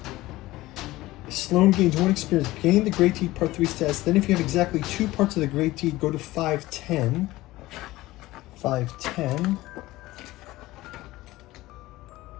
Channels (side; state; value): right; quieter; 18.0 dB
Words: Sloan gains 1 experience. Gain the Great Deed Part 3 status. Then if you have exactly 2 parts of the Great Deed, go to 510. 510.